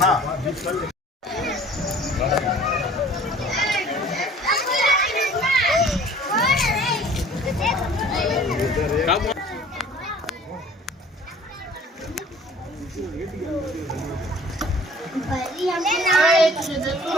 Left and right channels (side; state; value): both; normal; correlation 0.50